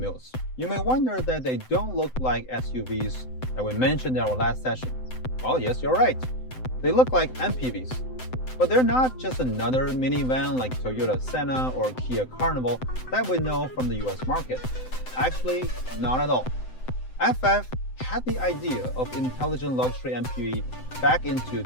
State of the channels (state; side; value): late; right; 7.8 ms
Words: You may wonder that they don't look like SUVs that we mentioned in our last session. Well, yes, you're right. They look like MPVs. But they're not just another minivan like Toyota Senna or Kia Carnival that we know from the US market. Actually, not at all. FF had the idea of intelligent luxury MPV back into